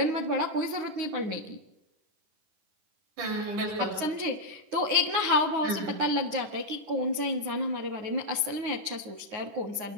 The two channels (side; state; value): left; late; 9.5 ms